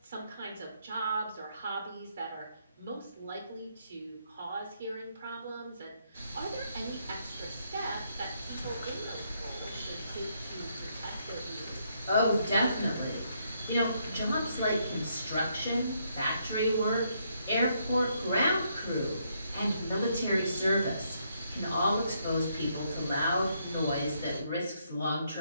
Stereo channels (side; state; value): both; inverted; correlation -0.74